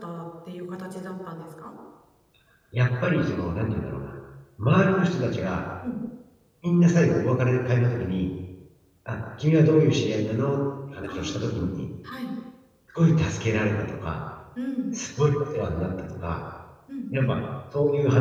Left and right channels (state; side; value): identical; both; correlation 1.00